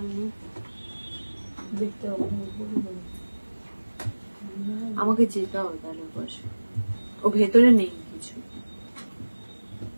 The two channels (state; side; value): inverted; both; correlation -1.00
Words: আমাকে যেতে হবে তাহলে বসে, ও ভেতরে নেই কিছু।